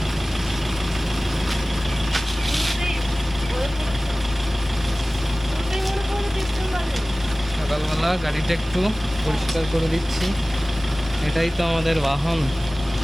সকালবেলা গাড়িটা একটু পরিষ্কার করে দিচ্ছি, এটাই তো আমাদের বাহন।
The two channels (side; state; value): both; normal; correlation 0.98